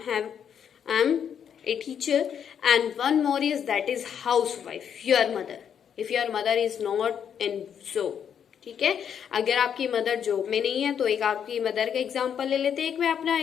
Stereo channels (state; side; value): quieter; right; 8.2 dB